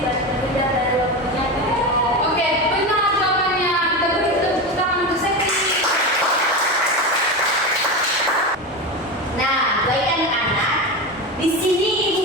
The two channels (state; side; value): normal; both; correlation 0.20